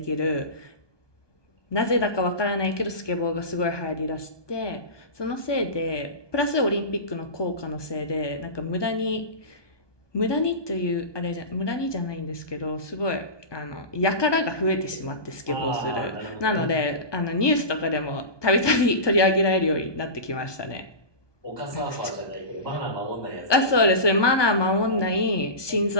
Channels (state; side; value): late; right; 1.2 ms